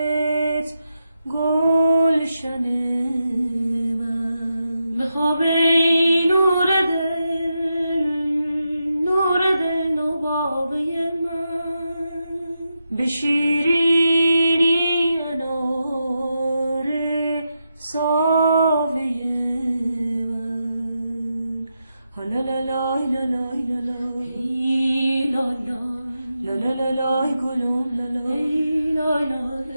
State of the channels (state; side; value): inverted; both; correlation -0.86